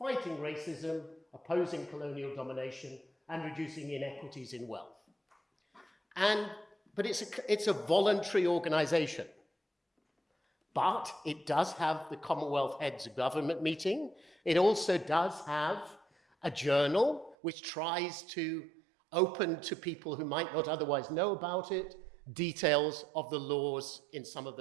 racism, opposing colonial domination, and reducing inequities in wealth. But it's a voluntary organization. But it does have the Commonwealth Heads of Government meeting. It also does have a journal which tries to open to people who might not otherwise know about it details of the laws in some of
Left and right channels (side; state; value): left; drops out; at 17.4 s